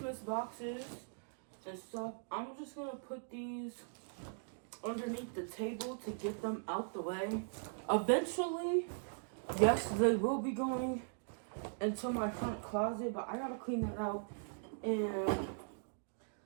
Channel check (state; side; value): silent; left; digital silence